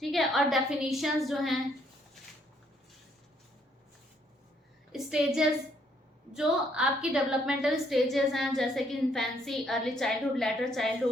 ठीक है। और डेफिनेशंस जो हैं, स्टेजेस जो आपकी डेवलपमेंटल स्टेजेस हैं, जैसे कि infancy, early childhood, letter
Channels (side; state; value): both; normal; correlation 0.69